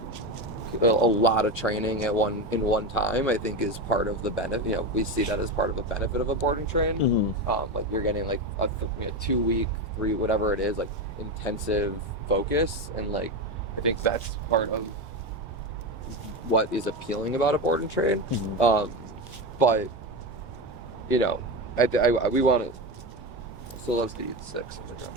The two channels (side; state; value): both; normal; correlation 0.17